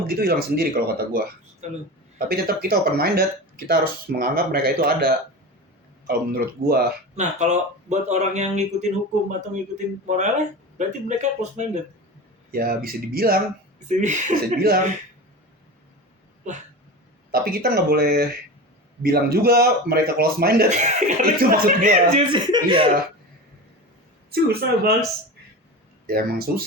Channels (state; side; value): normal; both; correlation 0.28